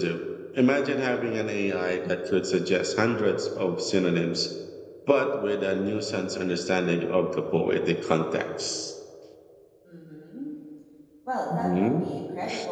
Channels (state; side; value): identical; both; correlation 1.00